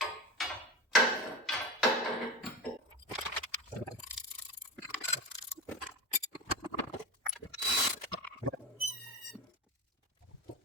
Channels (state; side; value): normal; both; correlation 0.25